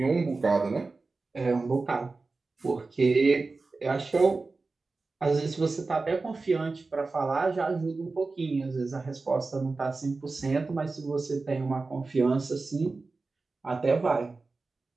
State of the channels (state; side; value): quieter; left; 3.8 dB